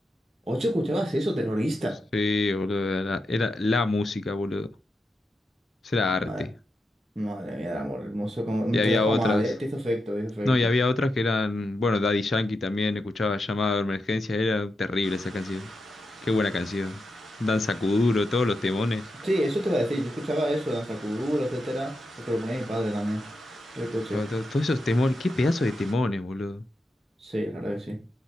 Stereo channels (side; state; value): both; normal; correlation 0.87